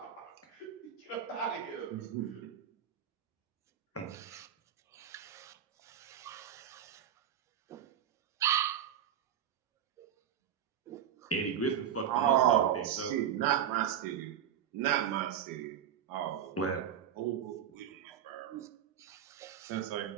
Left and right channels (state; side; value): quieter; left; 9.6 dB